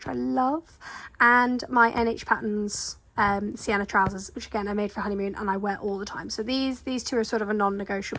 I love, and my NH Patterns sienna trousers, which again I made for honeymoon and I wear all the time. So these two are sort of a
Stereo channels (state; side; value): identical; both; correlation 1.00